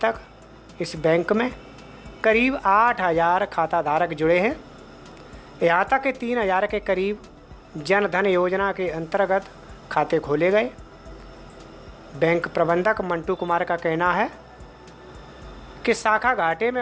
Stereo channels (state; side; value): identical; both; correlation 1.00